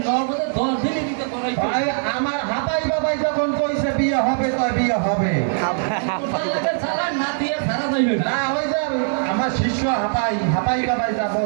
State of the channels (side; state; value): left; silent; 61 dB below the other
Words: নগদে 10 দিনে দিতে করাই ভাই আমার হাবাই বাবাই যখন কইছে বিয়ে হবে তো বিয়ে হবে কোথায় চালান না দিয়ে সারা যাইবে না না হই যাবে আমার শিষ্য হাবাই বাবাই যা